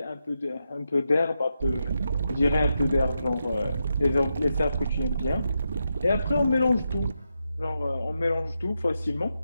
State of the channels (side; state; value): both; inverted; correlation -0.85